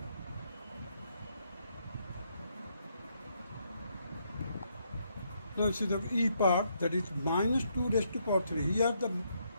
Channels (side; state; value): both; inverted; correlation -0.75